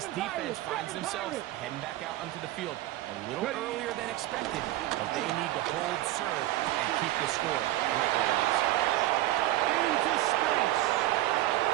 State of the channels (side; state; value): left; quieter; 15.6 dB